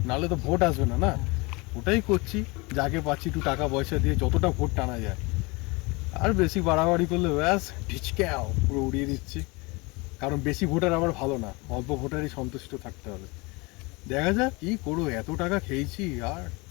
নাহলে তো ভোট আসবে না। না, ওটাই করছি, যাকে পাচ্ছি একটু টাকা পয়সা দিয়ে যতটা ভোট টানা যায়। আর বেশি বাড়াবাড়ি করলে ব্যাস ঢিচক্যাও পুরো উড়িয়ে দিচ্ছি। কারণ বেশি ভোটার আবার ভালো না, অল্প ভোটারই সন্তুষ্ট থাকতে হবে। দেখা যাক কি করবো, এত টাকা খেয়েছি আর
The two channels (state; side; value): quieter; right; 26.1 dB